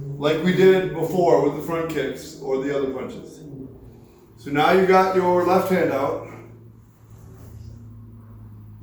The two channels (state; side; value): identical; both; correlation 1.00